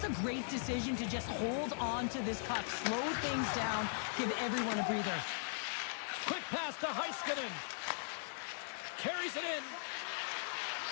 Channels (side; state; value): right; silent; digital silence